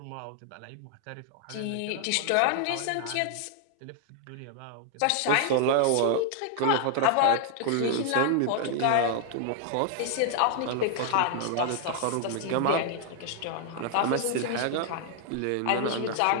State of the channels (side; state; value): both; different; correlation 0.00